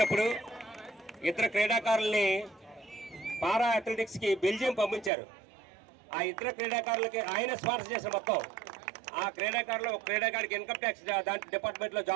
ఇతర క్రీడాకారుల్ని పారా అథ్లెటిక్స్కి బెల్జియం పంపించారు. ఆ ఇతర క్రీడాకారులకి ఆయన స్పాన్సర్ చేసిన మొత్తం ఆ క్రీడాకారులు, క్రీడాకారికి ఇన్కమ్ ట్యాక్స్ దాంట్లో డిపార్ట్మెంట్లో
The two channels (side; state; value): left; drops out; at 5.1 s